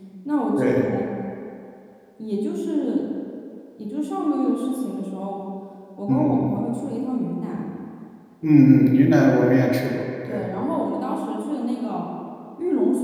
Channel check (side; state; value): both; identical; correlation 1.00